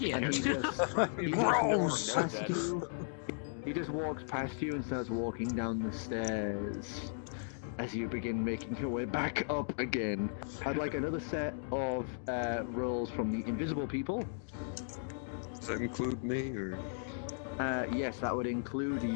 And he walks past you. He just walks past you and starts walking down the stairs. As you begin making your way back up again, I'd like another set of rolls from the invisible people. Does that include me, or? Yes, that would include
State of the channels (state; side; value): silent; right; digital silence